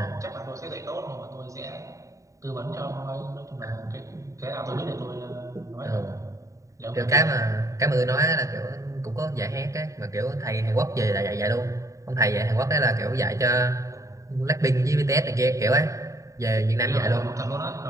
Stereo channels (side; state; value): left; late; 0.16 ms